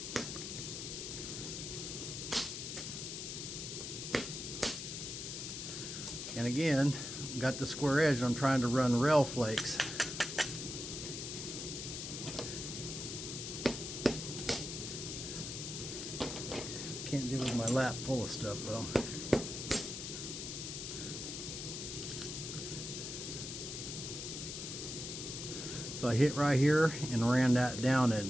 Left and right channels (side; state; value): left; noise; hiss, 6 dB below the sound